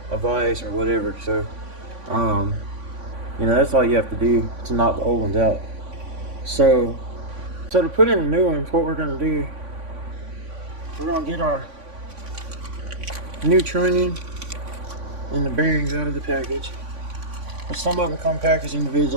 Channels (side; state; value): left; late; 3.5 ms